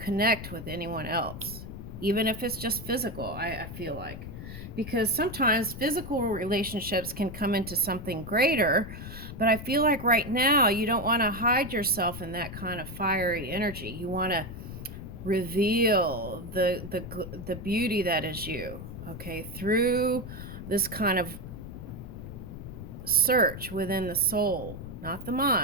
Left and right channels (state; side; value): noise; left; rumble, 10 dB below the sound